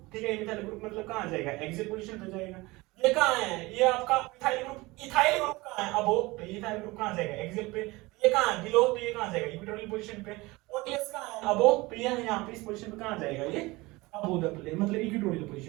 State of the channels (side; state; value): left; quieter; 22.0 dB